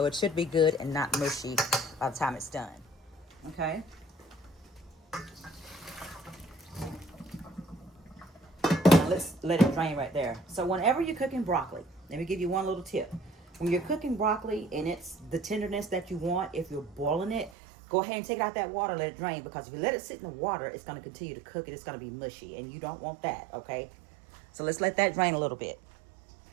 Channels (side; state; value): left; drops out; at 17.5 s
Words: it should be good and not mushy by the time it's done. Okay. Let's let it drain right there. So whenever you're cooking broccoli, let me give you one little tip. When you're cooking broccoli and it's the tenderness that you want, if you're boiling it, go ahead and take it out that water, let it drain, because if you let it sit in the water, it's going to continue to cook it. It's going to be mushy, and you don't want that, okay? So let's let that drain a little bit.